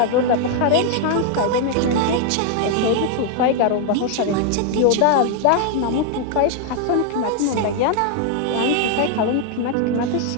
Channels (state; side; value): different; both; correlation 0.00